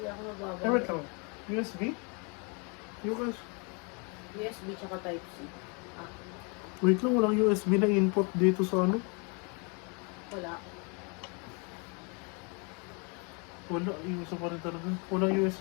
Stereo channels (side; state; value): right; quieter; 33.9 dB